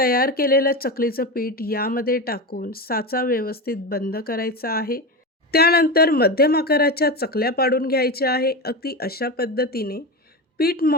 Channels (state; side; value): normal; both; correlation 0.20